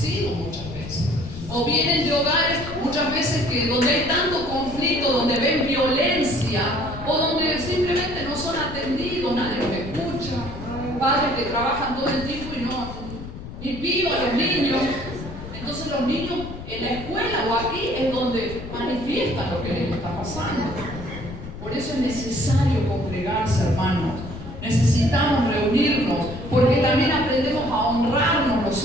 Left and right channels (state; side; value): noise; left; rumble, 11 dB below the sound